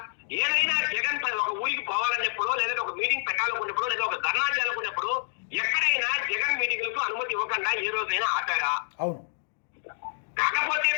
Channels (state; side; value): silent; right; digital silence